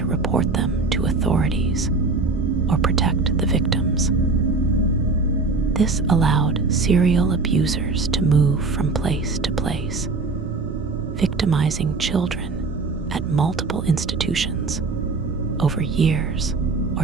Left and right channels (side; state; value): left; quieter; 3.9 dB